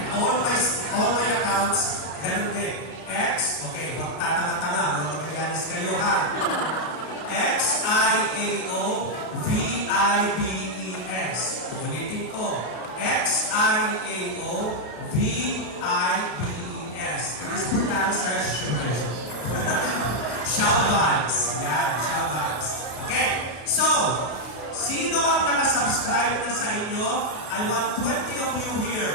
all my accounts, ganun din. X, okay, huwag tatanga-tanga, huwag magagalas kayo ha. XIAOVIBES. Ulitin ko. XIAOVIBES. It is pronounced as Shoutouts. Yan, shoutouts. Okay, so, sino ang nakasubscribe na sa inyo? I want 20 of you here.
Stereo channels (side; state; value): right; late; 33 ms